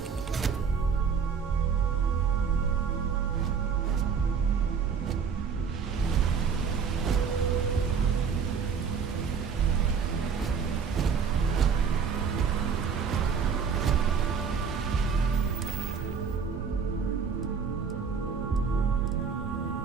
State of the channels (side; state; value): left; quieter; 6.3 dB